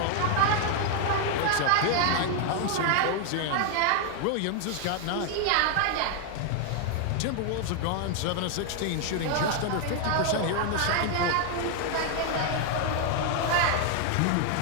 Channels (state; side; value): different; both; correlation 0.00